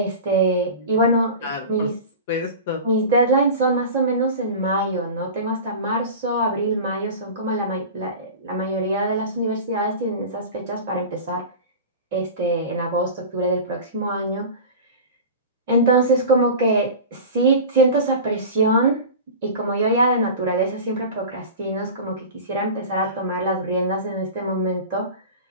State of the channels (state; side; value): inverted; both; correlation -0.33